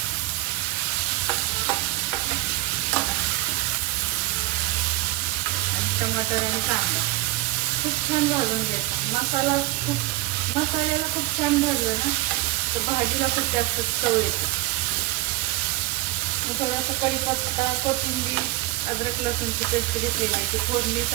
टमाटर आणि कांदा खूप छान भाजून घ्यायचा। मसाल्याला खूप छान भाजलं ना तर भाजीला खूप जास्त चव येते। मी थोडासा कढीपत्ता, कोथिंबीर, अद्रक लसूणची पेस्ट घेतलेली आहे, ती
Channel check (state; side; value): quieter; left; 18.2 dB